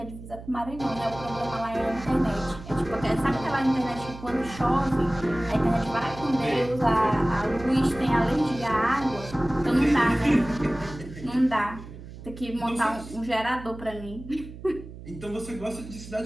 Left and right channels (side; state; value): right; noise; hum, 14 dB below the sound